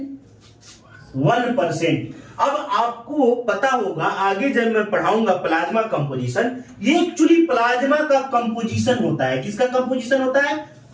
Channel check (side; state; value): both; identical; correlation 1.00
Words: 1%। अब आपको पता होगा आगे जब मैं पढ़ाऊंगा प्लाज्मा कंपोजिशन, ये एक्चुअली प्लाज्मा का कंपोजिशन होता है। किसका कंपोजिशन होता है?